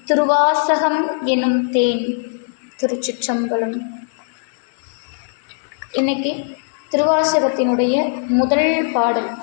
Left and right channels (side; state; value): right; silent; digital silence